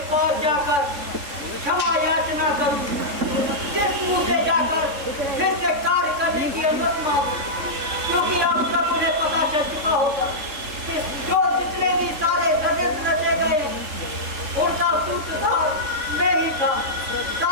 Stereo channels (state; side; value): late; left; 3.6 ms